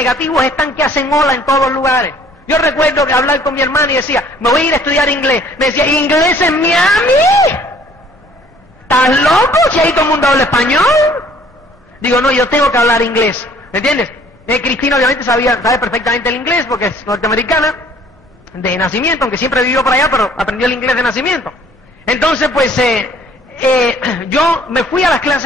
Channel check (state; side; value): normal; both; correlation 0.57